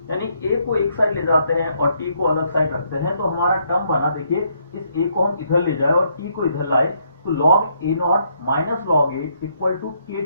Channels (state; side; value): inverted; both; correlation -0.72